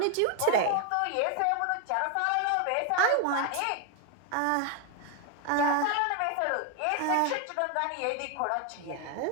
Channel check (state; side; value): different; both; correlation 0.01